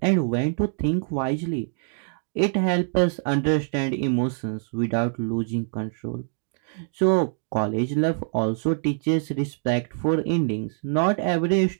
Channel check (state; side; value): silent; left; 56 dB below the other